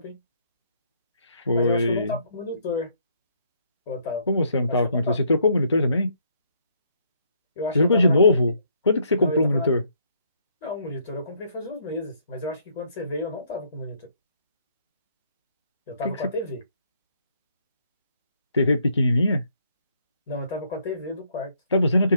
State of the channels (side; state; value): both; inverted; correlation -0.68